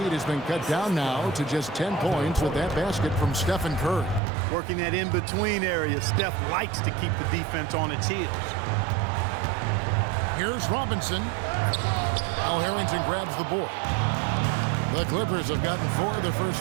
has been cut down now to just 10 points with that basket from Stephen Curry. Working that in-between area, Steph likes to keep the defense on its heels. Here's Robinson. Al Harrington grabs the board. The Clippers have gotten 4 of their first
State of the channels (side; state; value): left; drops out; at 4.2 s